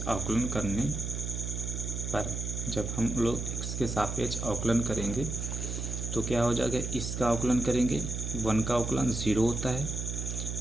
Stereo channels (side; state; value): right; noise; hum, 4 dB below the sound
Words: जब हम लोग x के सापेक्ष अवकलन करेंगे तो क्या हो जाएगा? इसका अवकलन करेंगे, 1 का अवकलन 0 होता है,